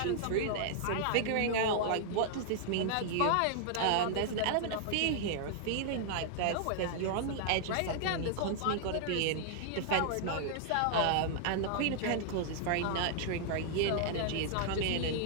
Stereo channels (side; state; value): both; different; correlation 0.00